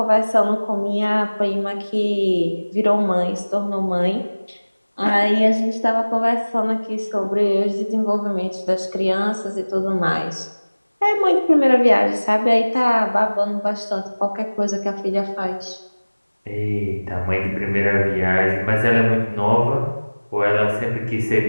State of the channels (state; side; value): inverted; both; correlation -1.00